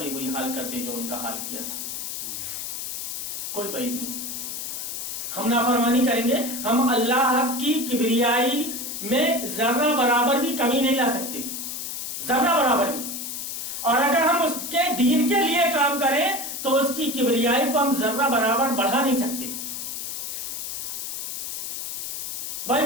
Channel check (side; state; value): left; noise; hiss, 5 dB below the sound